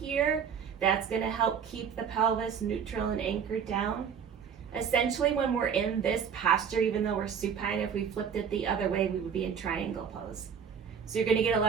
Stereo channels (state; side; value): quieter; left; 7.3 dB